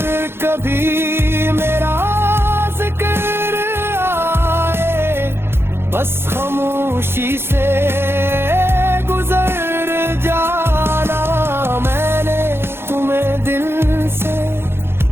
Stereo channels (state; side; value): late; left; 0.11 ms